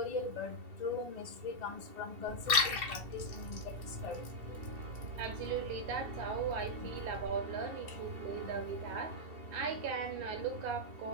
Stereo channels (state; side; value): late; left; 2.7 ms